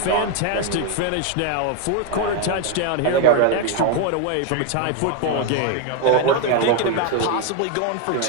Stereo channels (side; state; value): both; different; correlation 0.01